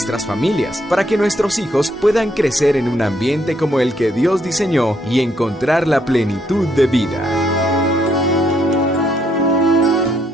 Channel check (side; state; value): both; normal; correlation 0.73